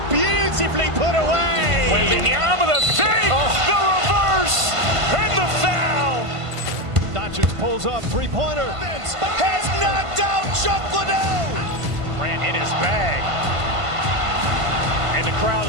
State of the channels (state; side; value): late; left; 1.5 ms